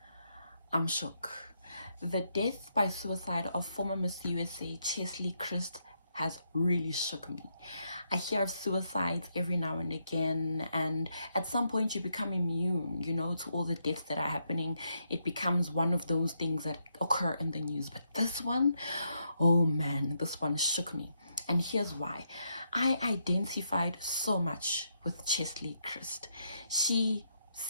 I'm shook. The death by suicide of former Miss USA Cheslie Kryst has really shook me. I hear of suicides every now and again, and at some point you become immune, to all the deaths that are happening. It becomes one of those things that occur in the news. But this one, oh man, this one shook me. And here's why. I identified so much with Cheslie Kryst. She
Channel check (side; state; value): both; inverted; correlation -0.79